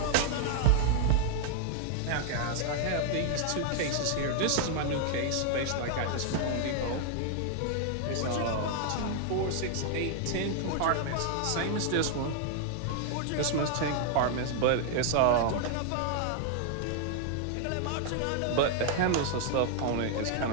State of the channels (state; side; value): different; both; correlation 0.00